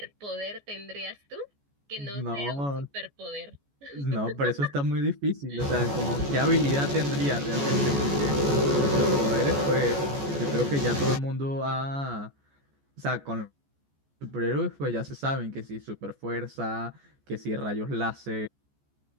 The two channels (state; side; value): late; left; 14 ms